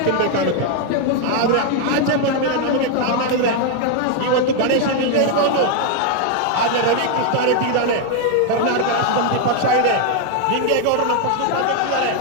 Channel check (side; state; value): both; different; correlation 0.00